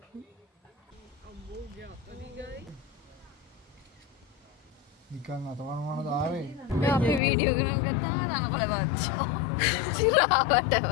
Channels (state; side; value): drops out; right; at 7.2 s